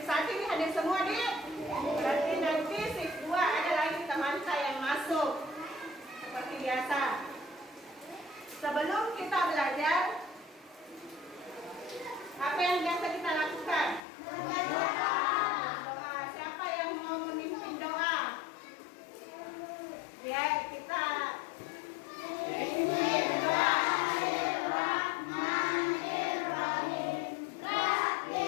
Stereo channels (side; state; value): right; drops out; at 14.0 s